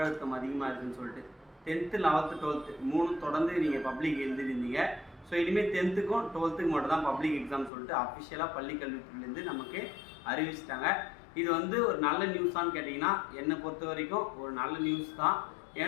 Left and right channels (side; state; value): right; drops out; at 7.7 s